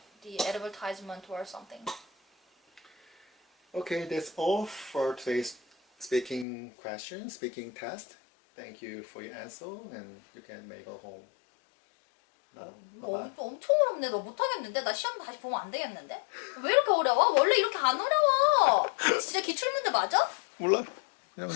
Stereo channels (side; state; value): right; drops out; at 6.5 s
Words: the advertisement or something. Okay, that's all for today's speaking test. Thank you for your answer, and you can make a home. 엄청 어렵네. 너 못하겠는데? 나 시험 다시 보면 안 되겠는데? 왜 이렇게 어려워? 원래 이렇게 안 어려워. 진짜 기출문제 맞아? 몰라.